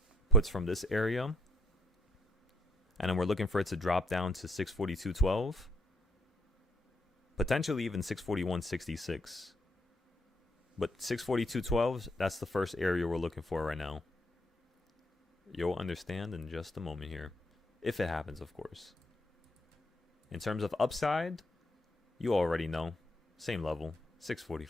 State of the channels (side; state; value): both; normal; correlation 0.68